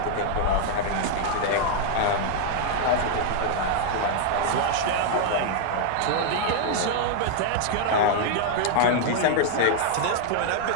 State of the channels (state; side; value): different; both; correlation 0.00